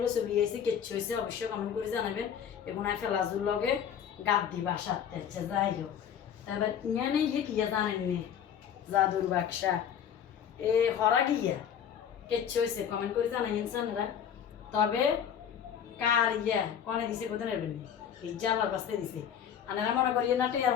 চলে গেছি কেচ্ছু হয়েছে অবশ্যই কমেন্ট করে জানাবেন এবং ফেলাজুর লগে গাদ দি বাসার থেকে যাই হোক তারপর ইয়ানে ইয়ে কিয়া জানেননি জাদুর বাক্সা এ হরা গিয়া কেচ্ছু হয়েছে কমেন্ট করে জানাই ইনসানরা তবে কার ইয়া কনে দিছে কোথায় নেবেন ইজ্জালার কাছে দিছে আনারা মনে করি না টিয়া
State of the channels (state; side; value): quieter; right; 8.6 dB